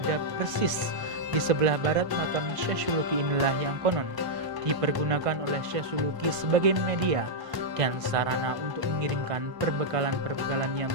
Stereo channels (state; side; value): late; left; 1.5 ms